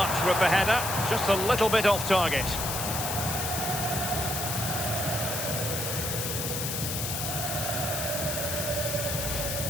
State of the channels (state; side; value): noise; left; hiss, 2 dB below the sound